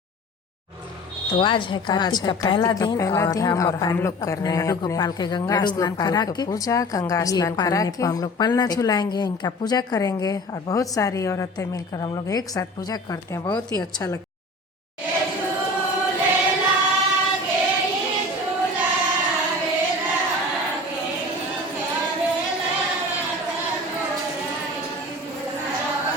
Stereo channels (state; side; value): normal; both; correlation 0.40